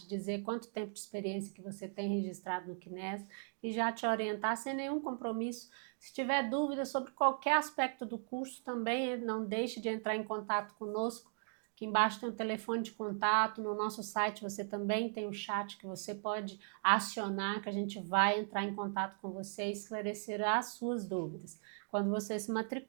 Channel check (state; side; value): silent; left; 52 dB below the other